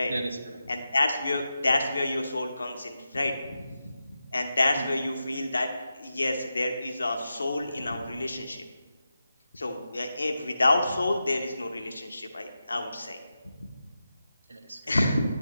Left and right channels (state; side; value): inverted; both; correlation -0.90